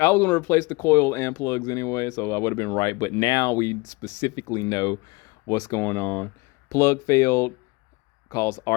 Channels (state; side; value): quieter; right; 25.2 dB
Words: was going to replace the coil and plugs anyway, so I would have been right. But now we specifically know what's going on. Plug failed, caused